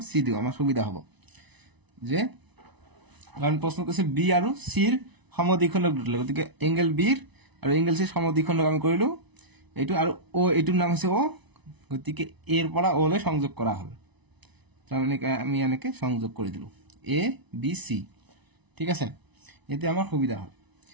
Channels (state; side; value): late; left; 1.0 ms